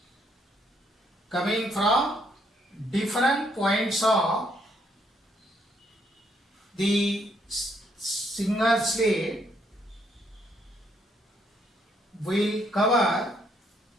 coming from different points of the single slit, will cover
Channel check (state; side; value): normal; both; correlation 0.72